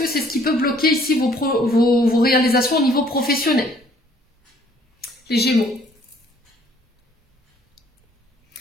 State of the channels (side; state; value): both; normal; correlation 0.61